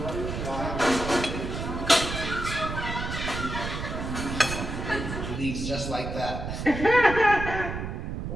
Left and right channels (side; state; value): right; noise; rumble, 5 dB below the sound